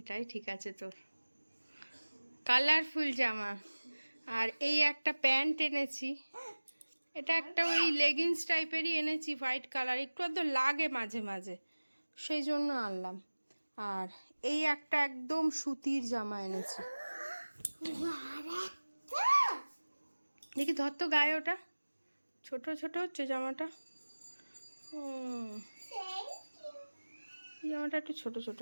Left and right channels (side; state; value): both; inverted; correlation -1.00